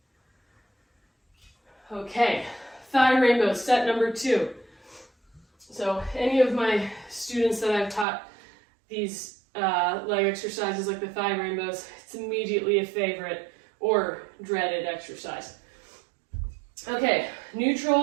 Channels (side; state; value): left; drops out; at 8.1 s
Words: Okay, thigh rainbow, set number 2. So any of my students that I've taught these leg exercises like the thigh rainbows, it's immediately a favorite or dreaded exercise. Okay,